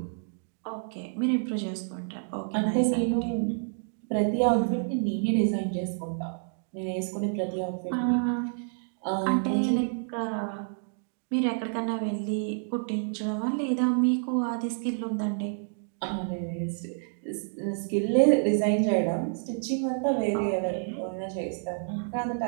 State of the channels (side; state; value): left; silent; digital silence